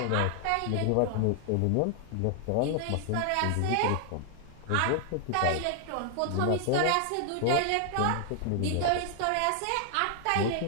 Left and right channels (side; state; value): both; different; correlation 0.00